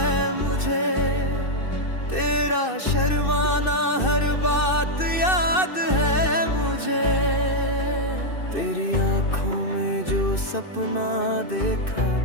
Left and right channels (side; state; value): right; late; 2.6 ms